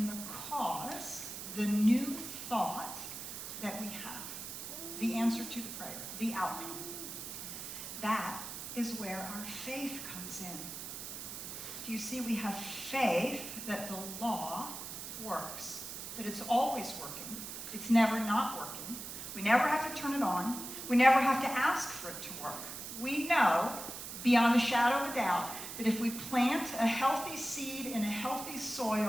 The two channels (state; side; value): noise; right; hiss, 8 dB below the sound